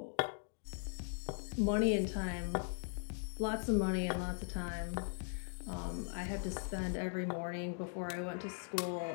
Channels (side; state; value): right; silent; digital silence